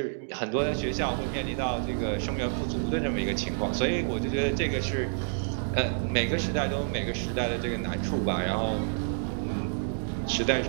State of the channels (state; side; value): silent; left; digital silence